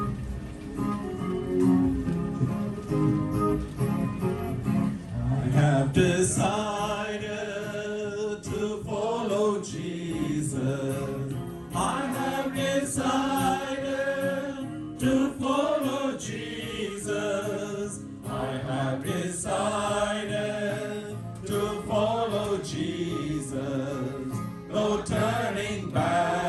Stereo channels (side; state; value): both; identical; correlation 1.00